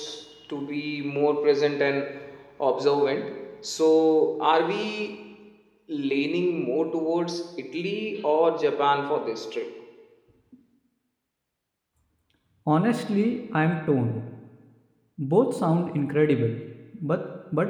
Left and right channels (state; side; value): identical; both; correlation 1.00